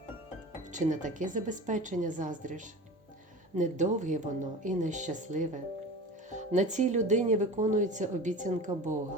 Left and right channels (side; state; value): both; normal; correlation 0.34